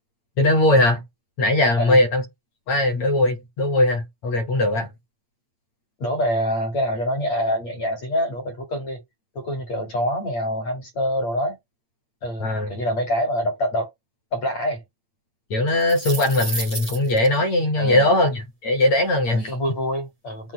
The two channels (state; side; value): late; right; 8.7 ms